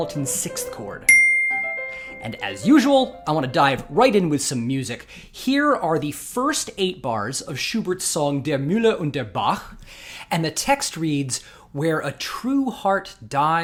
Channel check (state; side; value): identical; both; correlation 1.00